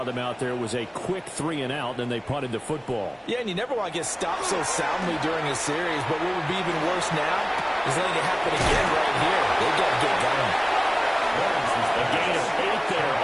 them out there was a quick 3-and-out, and they punted the football. Yeah, and you never want to get stopped so soundly during a series, but what would be even worse now is letting it happen again right here. They've got to get going. A gain of 8 there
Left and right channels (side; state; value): both; identical; correlation 1.00